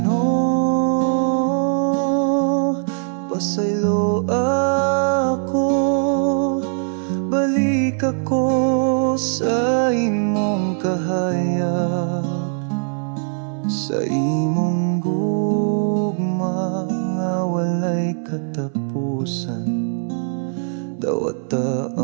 pasaylo ako, balik ako sa imong kahayag, sa imong gugma nga walay katapusan. Dawata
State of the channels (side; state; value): left; silent; 65 dB below the other